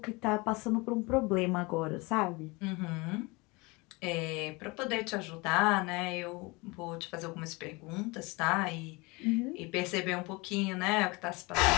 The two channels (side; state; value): right; quieter; 25.6 dB